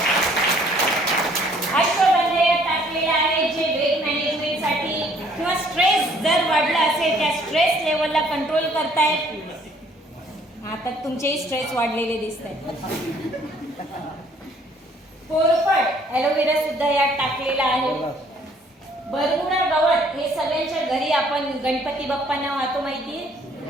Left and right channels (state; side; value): normal; both; correlation 0.61